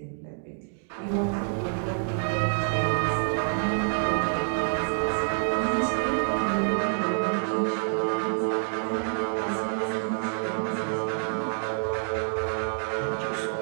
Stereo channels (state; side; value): silent; left; digital silence